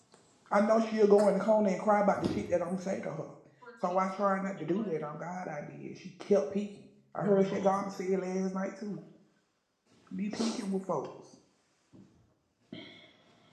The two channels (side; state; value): both; identical; correlation 1.00